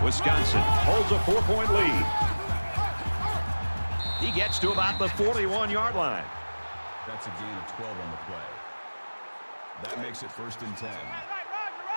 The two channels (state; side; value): inverted; both; correlation -1.00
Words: Wisconsin holds a 4-point lead. He gets to about the 41-yard line. That's a gain of 12 on the play. That makes it 1st and 10.